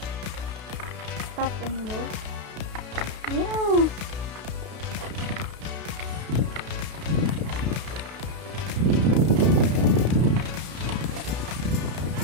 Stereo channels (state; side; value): late; left; 32 ms